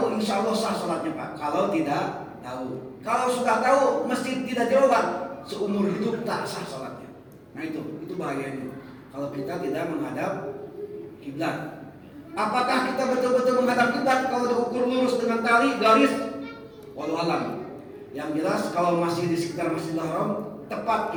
insya Allah sah sholatnya Pak. Kalau tidak tahu, kalau sudah tahu masjid tidak jauhan, seumur hidup tak sah sholatnya. Nah itu bahayanya. Kalau kita tidak menghadap kiblat. Apakah kita betul-betul menghadap kiblat kalau diukur lurus dengan tali garis? Wallahu alam. Yang jelas kalau masih di sekitar Masjidil Haram tepat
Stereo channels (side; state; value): both; identical; correlation 1.00